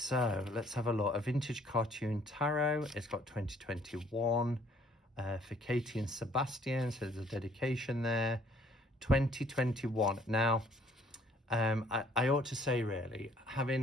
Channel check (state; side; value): normal; both; correlation 0.61